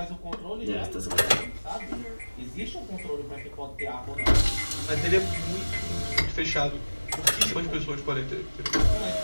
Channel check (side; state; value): both; inverted; correlation -1.00